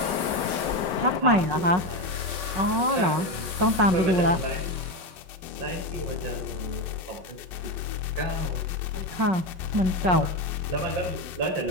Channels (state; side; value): late; left; 5.2 ms